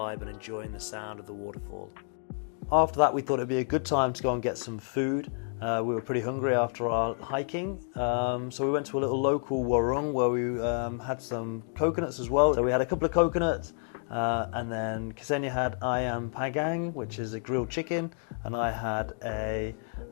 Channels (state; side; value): silent; right; digital silence